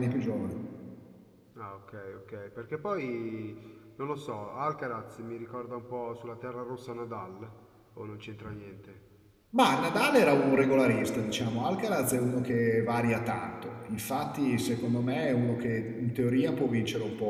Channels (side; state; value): both; identical; correlation 1.00